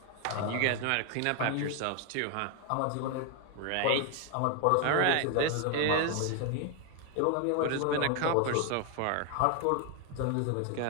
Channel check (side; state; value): both; different; correlation 0.01